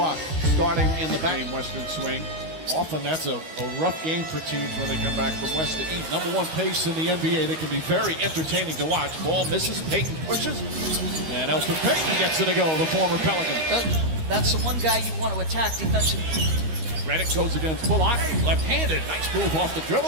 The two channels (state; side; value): late; left; 13 ms